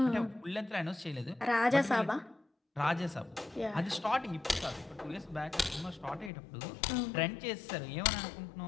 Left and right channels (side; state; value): right; drops out; at 6.3 s